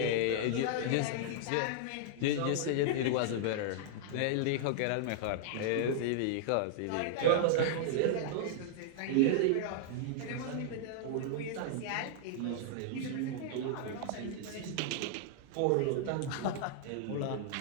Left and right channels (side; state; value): both; different; correlation -0.01